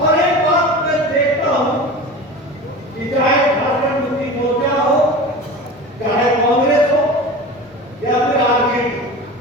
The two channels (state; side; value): normal; both; correlation 0.33